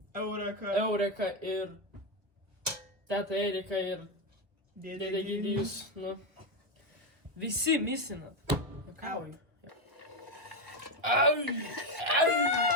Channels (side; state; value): left; late; 1.3 ms